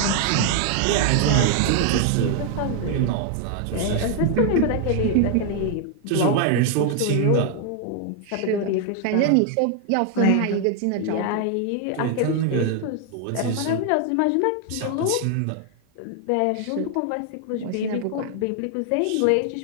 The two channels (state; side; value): different; both; correlation 0.00